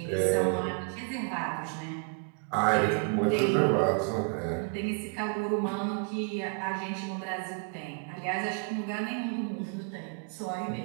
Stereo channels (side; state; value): left; quieter; 39.6 dB